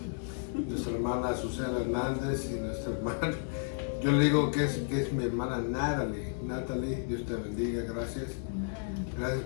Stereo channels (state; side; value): silent; right; 56 dB below the other